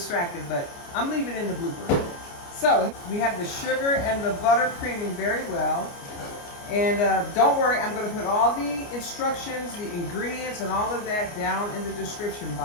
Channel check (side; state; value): right; late; 29 ms